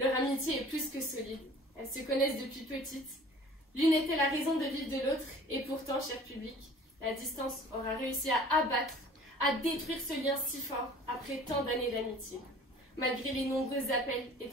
amitié est plus que solide, elles se connaissent depuis petite. L'une était la raison de vivre de l'autre, et pourtant, cher public, la distance aura réussi à abattre, à détruire ce lien si fort après tant d'années d'amitié, malgré les nombreux appels et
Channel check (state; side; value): normal; both; correlation 0.47